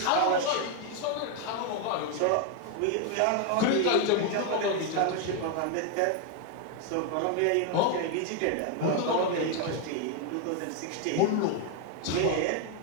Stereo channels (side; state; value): both; different; correlation 0.01